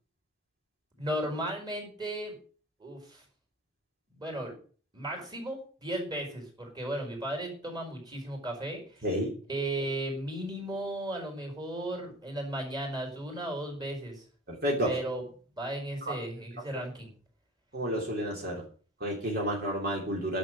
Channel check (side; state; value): both; normal; correlation 0.39